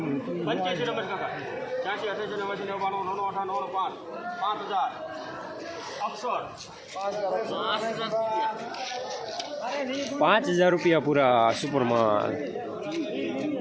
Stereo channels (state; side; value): identical; both; correlation 1.00